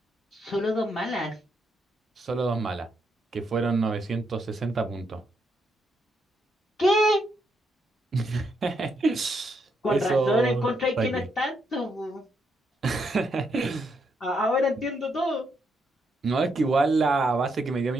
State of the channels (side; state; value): both; normal; correlation 0.78